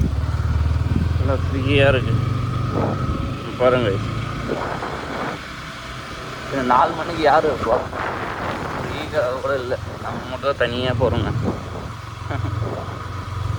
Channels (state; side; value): identical; both; correlation 1.00